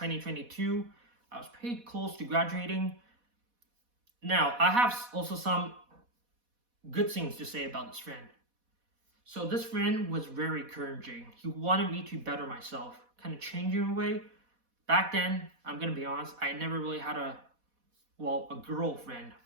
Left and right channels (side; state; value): left; late; 4.1 ms